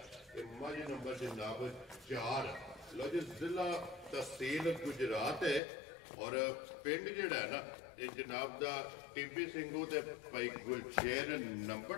ਇਹ ਮੱਝ ਨੰਬਰ ਜਨਾਬ 4 ਲੋ ਜੀ ਜ਼ਿਲ੍ਹਾ ਤਹਿਸੀਲ ਗੁਜਰਾਤ ਹੈ ਔਰ ਪਿੰਡ ਜਿਹੜਾ ਹੈ ਨਾ ਇਹ ਜਨਾਬ ਦਾ ਟੀਬੀ ਸਿੰਘੂ ਤੇ ਭਾਈ ਗੁਲਸ਼ੇਰ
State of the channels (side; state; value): right; drops out; at 5.6 s